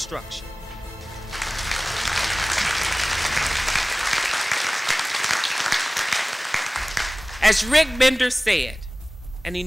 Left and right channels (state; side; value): normal; both; correlation 0.98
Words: As Rick Bender said, and he